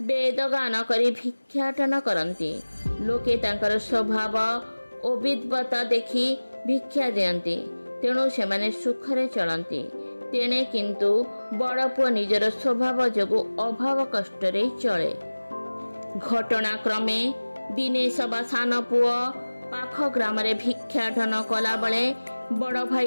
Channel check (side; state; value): both; inverted; correlation -1.00